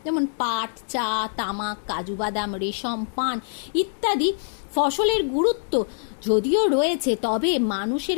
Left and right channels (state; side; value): silent; right; digital silence